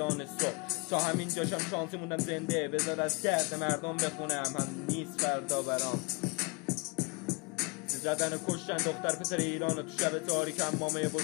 صبح. تا همین جاشم شانسی موندم زنده، بذار از درد مردم بخونم، هم نیست فردا برام. زدن و کشتن دختر پسر ایران و تو شب تاریک، هم مامه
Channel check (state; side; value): quieter; right; 30.1 dB